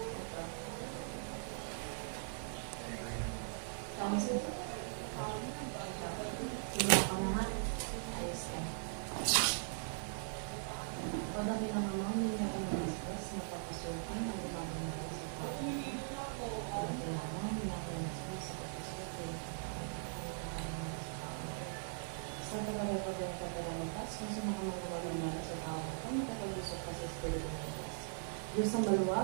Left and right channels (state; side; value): silent; left; 51 dB below the other